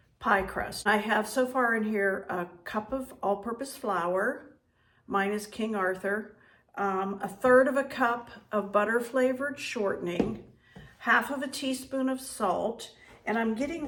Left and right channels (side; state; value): both; identical; correlation 1.00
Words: pie crust. I have so far in here a cup of all-purpose flour. Mine is King Arthur. A third of a cup of butter flavored shortening. Half of a teaspoon of salt, and I'm getting